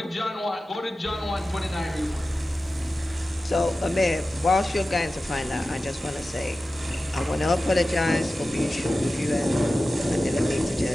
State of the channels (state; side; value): normal; both; correlation 0.94